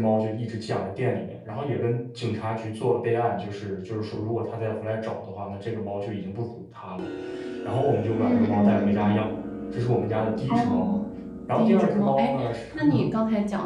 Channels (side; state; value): both; identical; correlation 1.00